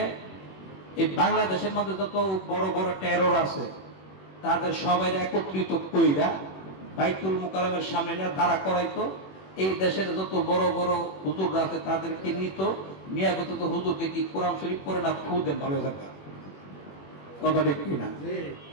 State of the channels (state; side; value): late; right; 21 ms